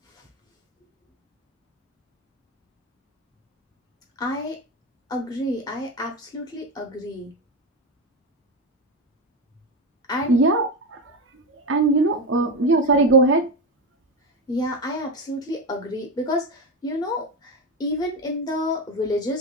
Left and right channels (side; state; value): both; normal; correlation 0.15